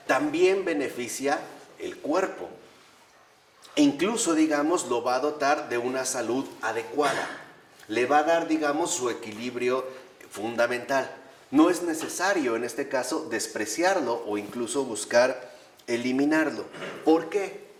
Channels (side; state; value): both; identical; correlation 1.00